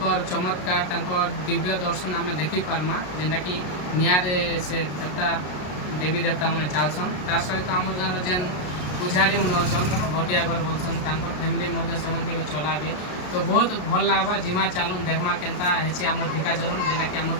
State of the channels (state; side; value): late; right; 33 ms